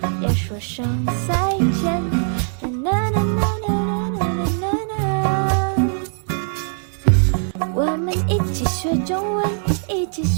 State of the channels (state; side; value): silent; left; 61 dB below the other